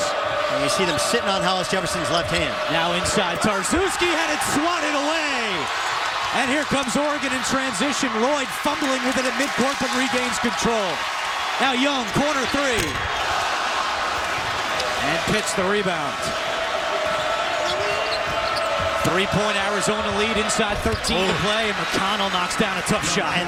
And you see them sitting on Hollis Jefferson's left hand. Now inside, Tarczewski had it swatted away. And here comes Oregon in transition. Lloyd fumbling with it at midcourt, but regains control. Now Young, corner three. And Pitts the rebound. 3-point Arizona lead, inside 13 to play, and Mcconnell knocks down a tough shot.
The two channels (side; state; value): both; identical; correlation 1.00